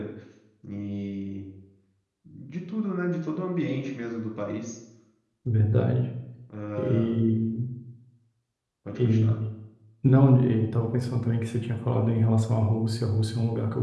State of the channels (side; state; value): both; identical; correlation 1.00